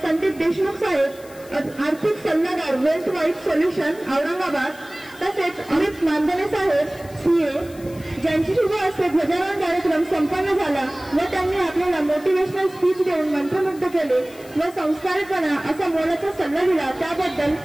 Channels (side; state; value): left; noise; hiss, 22 dB below the sound